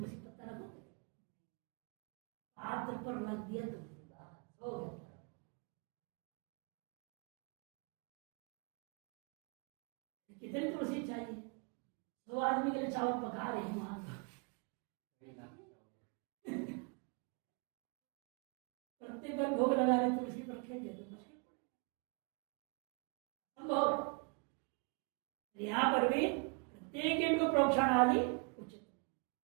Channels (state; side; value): quieter; left; 35.5 dB